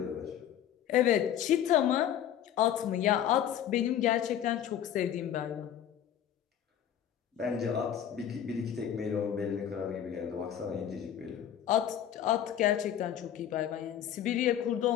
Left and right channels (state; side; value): quieter; right; 10.1 dB